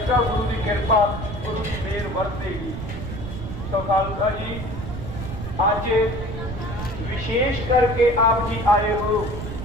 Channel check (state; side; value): noise; right; rumble, 7 dB below the sound